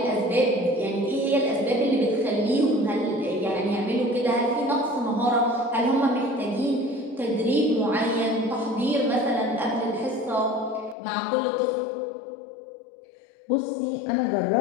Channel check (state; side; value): drops out; right; at 11.0 s